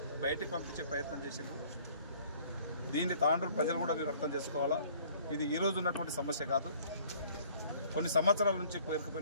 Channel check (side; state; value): both; inverted; correlation -0.55